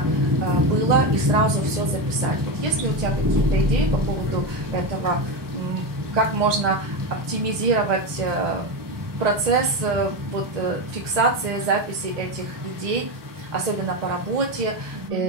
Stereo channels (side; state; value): left; late; 1.2 ms